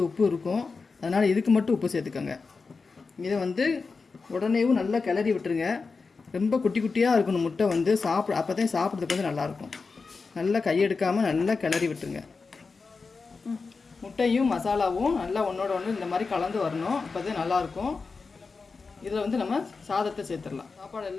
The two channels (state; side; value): quieter; right; 4.5 dB